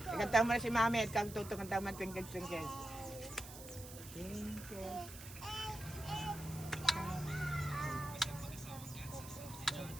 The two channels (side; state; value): right; noise; hiss, 14 dB below the sound